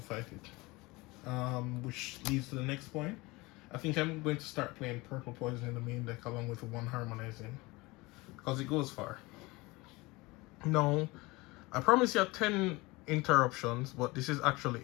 fight it. Which leads to the next point. I think I'm going to start playing Purple Poison in the main deck along with one Harmonizing. Because it goes far. No. I promise you 10 interruptions, but this is actually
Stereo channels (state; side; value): quieter; right; 22.9 dB